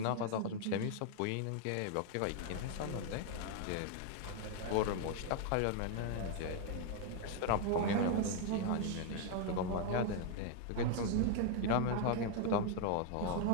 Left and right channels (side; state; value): both; different; correlation 0.00